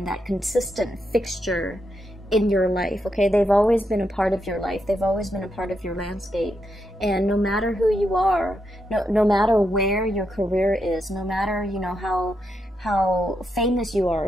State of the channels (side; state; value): both; normal; correlation 0.83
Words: that consistent fixture in your life. Okay, they've always been a part of your life, they've always been a part of your landscape, and no matter who you are, no matter where your career is, no matter, you know, how famous you